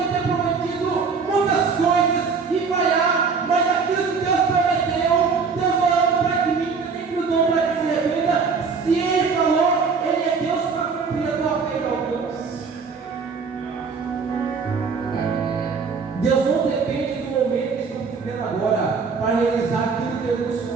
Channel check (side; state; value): left; quieter; 5.2 dB